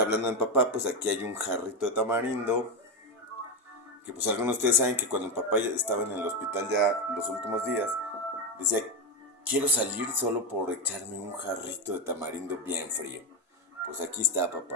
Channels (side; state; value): both; normal; correlation 0.11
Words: hablando de papá, pues aquí hay un jarrito de tamarindo, que pues algunos de ustedes saben que cuando el papá estaba en el hospital ya los últimos días, decía, quiero salir solo por echarme un jarrito de tamarindo bien frío. Pues aquí está, papá,